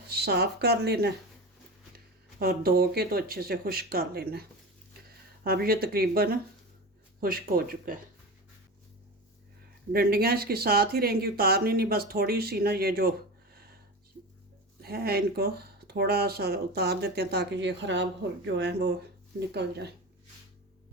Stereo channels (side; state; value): both; normal; correlation 0.27